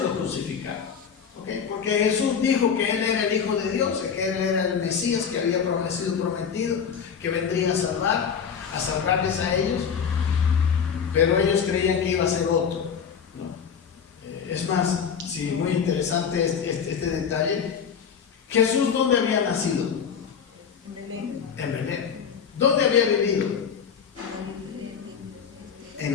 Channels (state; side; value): quieter; right; 7.0 dB